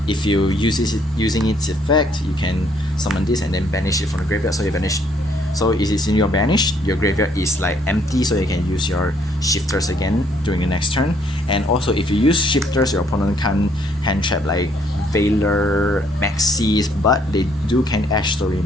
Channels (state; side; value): normal; both; correlation 0.67